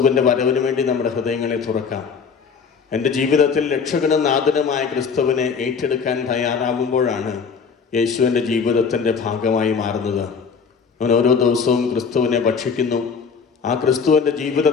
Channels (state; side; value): quieter; right; 5.8 dB